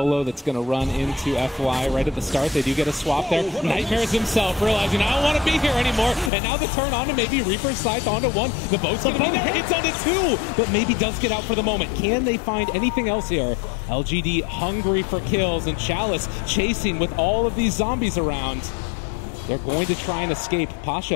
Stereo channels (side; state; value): right; drops out; at 6.3 s